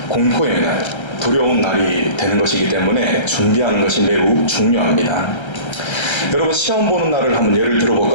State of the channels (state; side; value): late; right; 1.3 ms